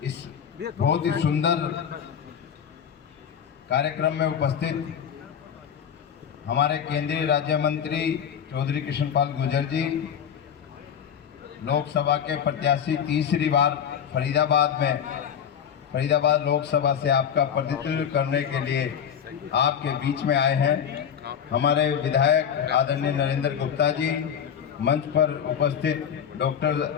इस बहुत ही सुंदर कार्यक्रम में उपस्थित हमारे केंद्रीय राज्य मंत्री चौधरी कृष्णपाल गुर्जर जी, लोकसभा के प्रत्याशी तीसरी बार फरीदाबाद लोकसभा से आपका प्रतिनिधित्व करने के लिए आपके बीच में आए हैं। हमारे विधायक आदरणीय नरेंद्र गुप्ता जी, मंच पर उपस्थित डॉक्टर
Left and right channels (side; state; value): right; quieter; 8.3 dB